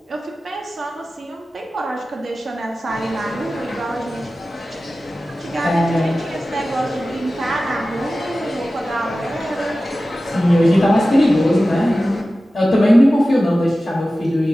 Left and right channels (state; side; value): normal; both; correlation 0.95